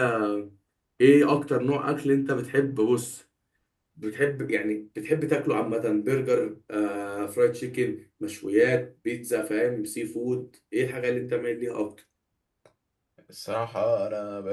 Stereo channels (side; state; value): both; identical; correlation 1.00